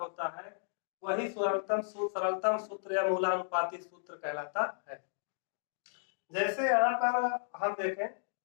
वही सरलतम सूत्र या मूलानुपाती सूत्र कहलाता है। जैसे यहाँ पर हम देखें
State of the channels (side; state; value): right; silent; digital silence